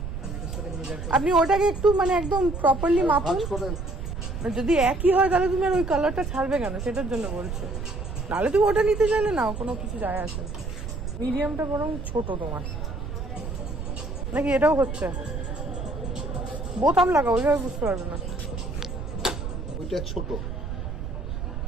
আপনি ওটাকে একটু মানে একদম প্রপারলি মাপুন, যদি একই হয় তাহলে তুমি আর ওই কালারটা ছাড়বে কেন, সেটার জন্য বলছো। নাহলে তুমি ওটা নিতে চাইলে নাও, কোনো কিছু যায় আসে। মিডিয়ামটা বরং ছোট তোমার নাকি? এটাও হচ্ছে বোতাম লাগাও, ওইভাবে বুঝতে পারবে না। ওইটা ছোট,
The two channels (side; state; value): right; noise; rumble, 6 dB below the sound